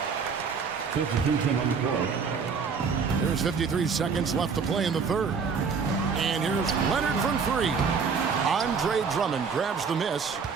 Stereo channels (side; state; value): left; quieter; 5.6 dB